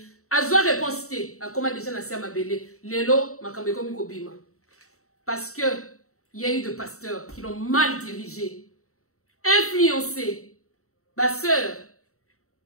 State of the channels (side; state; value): right; late; 0.64 ms